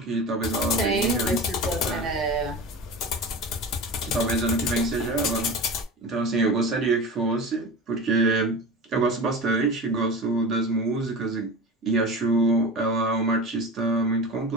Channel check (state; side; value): normal; both; correlation 0.30